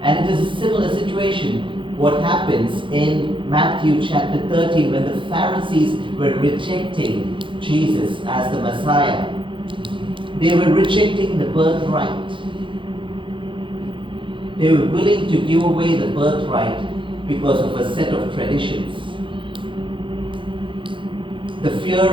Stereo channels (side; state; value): left; late; 0.24 ms